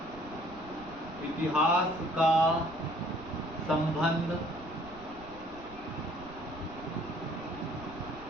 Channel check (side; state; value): right; noise; rumble, 18 dB below the sound